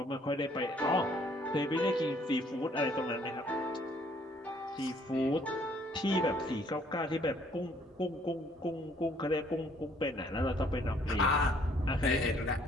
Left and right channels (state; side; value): normal; both; correlation 0.62